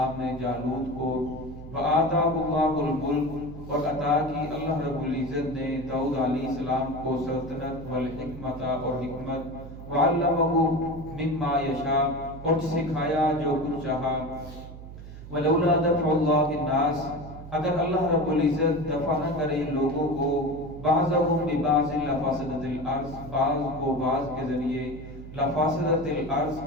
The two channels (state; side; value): noise; right; hum, 13 dB below the sound